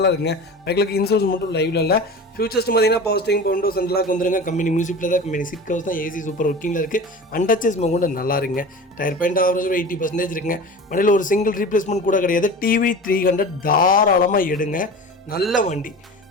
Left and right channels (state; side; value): normal; both; correlation 0.35